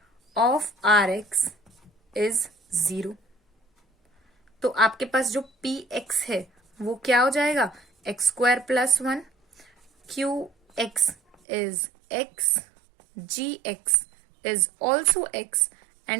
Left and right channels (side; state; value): left; drops out; at 11.4 s